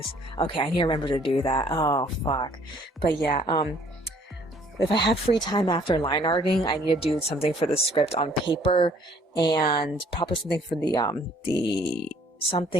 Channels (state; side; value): normal; both; correlation 0.59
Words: Okay, I need to remember to do that. Oh, fuck. But yeah, if I have free time after line arting, I need to do something for the script on paper, and probably something for